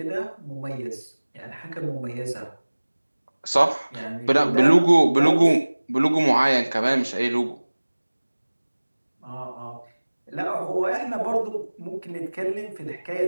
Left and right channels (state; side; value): inverted; both; correlation -1.00